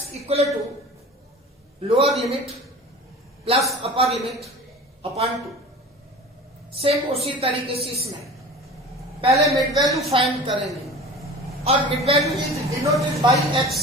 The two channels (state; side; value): normal; both; correlation 0.38